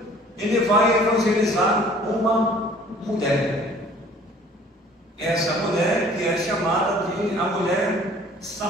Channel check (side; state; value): both; normal; correlation 0.52